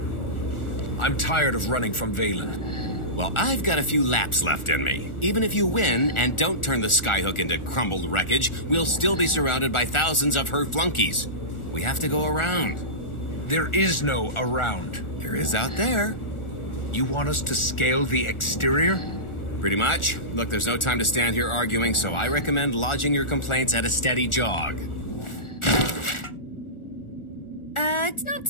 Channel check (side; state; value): right; late; 1.4 ms